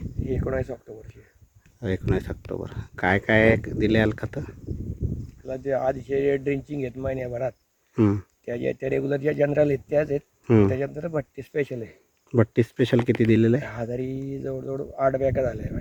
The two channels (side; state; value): both; identical; correlation 1.00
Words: ही 19 ऑक्टोबरची. 19 ऑक्टोबर. काय काय दिले खतं? त्याला जे आधीचे ड्रिंचिंग आहेत महिन्याभरात, हं, त्या रेग्युलर ज्या जनरल आहेत त्याच आहेत. हं. त्याच्यानंतर भट्टी स्पेशल आहे. बट्टी स्पेशल किती दिलेलं आहे? हजारी जवळजवळ 8 बॅगा झाल्या आहे